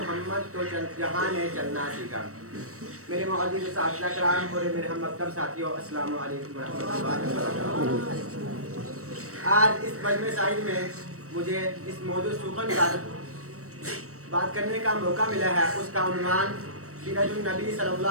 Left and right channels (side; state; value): left; late; 0.65 ms